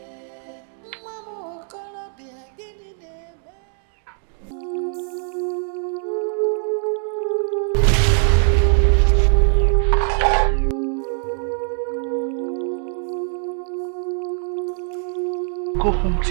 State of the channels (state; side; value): silent; left; 64 dB below the other